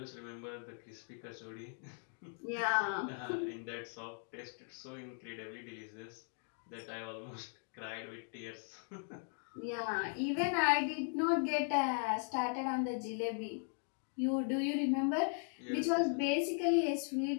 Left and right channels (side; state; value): right; silent; 52 dB below the other